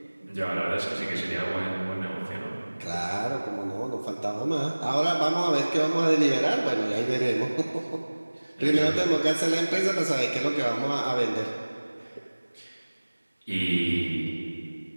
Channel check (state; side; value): inverted; both; correlation -1.00